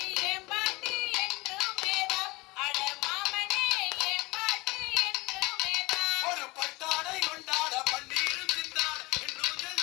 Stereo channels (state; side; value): quieter; right; 23.1 dB